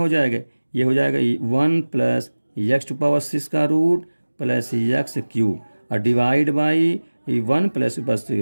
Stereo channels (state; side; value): inverted; both; correlation -1.00